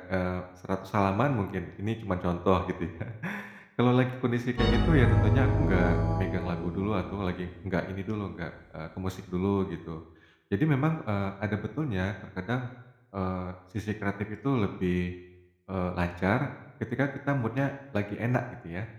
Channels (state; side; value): identical; both; correlation 1.00